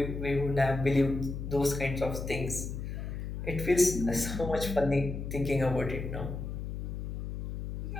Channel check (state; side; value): noise; left; hum, 5 dB below the sound